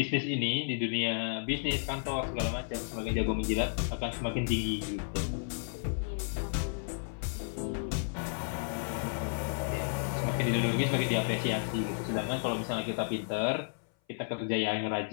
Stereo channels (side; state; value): right; silent; 56 dB below the other